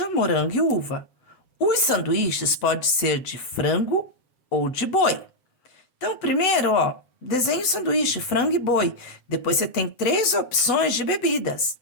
morango e uva. Os sanduíches podem ser de frango ou de boi. Então, primeiro, ó, desenhe o sanduíche, frango e boi. Depois você tem 3 opções de bebidas.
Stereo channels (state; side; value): late; right; 8.1 ms